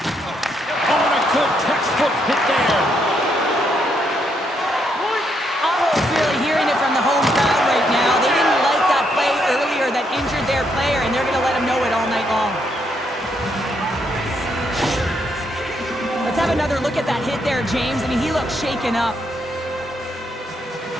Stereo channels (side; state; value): both; normal; correlation 0.76